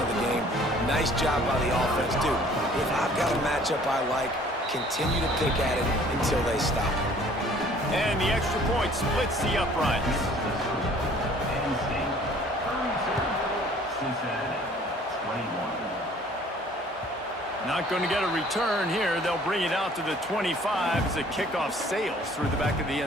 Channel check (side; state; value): both; normal; correlation 0.54